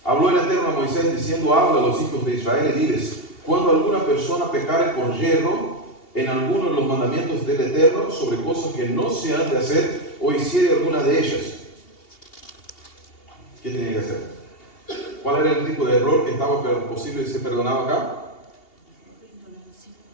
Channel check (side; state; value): right; late; 2.8 ms